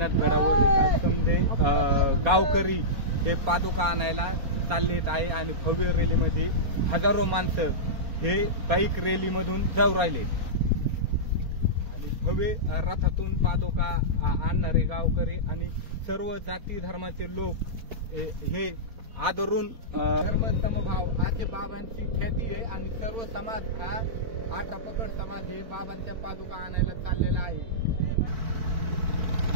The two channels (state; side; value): late; left; 4.3 ms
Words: गडावर समजे गावकरी हे पादुका आणायला चाललेत आहे आणि भव्य रॅलीमध्ये हजारो माणसं हे बाईक रॅलीमधून जाऊ राहिले आणि भव्य रथातून पादुका आणणारे गावकरी आणि सर्व जाती धर्माचे लोक हे आदरून धर्म समभाव असे बाबांची ख्याती आहे आणि सर्व समाज हा 18 पकड समाज हे बाबांच्या पादुका आणायला चाललेला आहे।